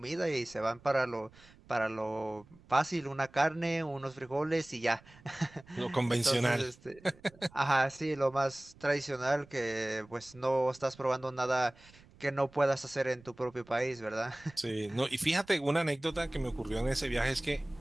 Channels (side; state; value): right; noise; rumble, 25 dB below the sound